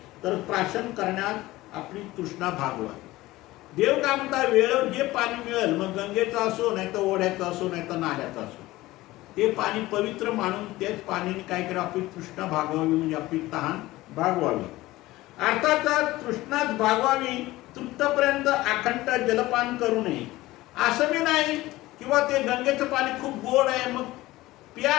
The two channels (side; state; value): right; quieter; 18.1 dB